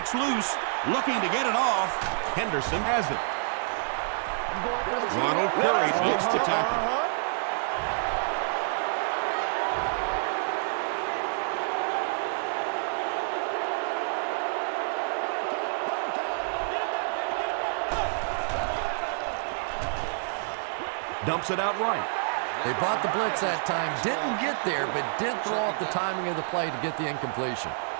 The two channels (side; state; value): left; silent; 59 dB below the other